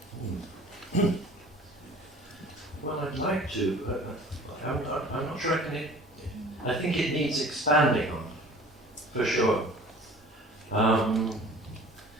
Well, I'd like to, but I'm not sure I think it needs expanding on, for sure. I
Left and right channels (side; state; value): both; normal; correlation 0.46